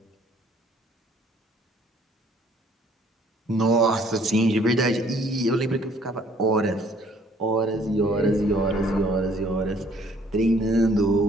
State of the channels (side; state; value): both; normal; correlation 0.60